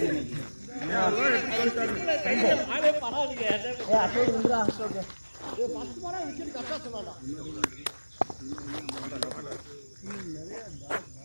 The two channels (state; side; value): inverted; both; correlation -1.00